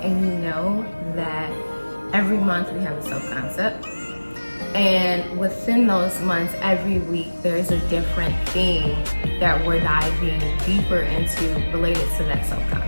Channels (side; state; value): both; inverted; correlation -1.00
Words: and you know that every month we have a self-concept, and within those months, every week, there's a different theme that we're diving deeper into related to that